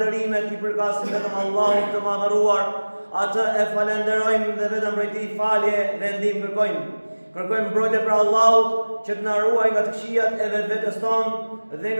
I përkasin vetëm Allahut të madhëruar, atë e falenderojmë dhe vetëm prej Tij falje dhe ndihmë kërkojmë. Kërkojmë mbrojtje për Allahut që të na ruajë nga të këqijat e vetvetes tonë dhe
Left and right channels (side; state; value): both; inverted; correlation -1.00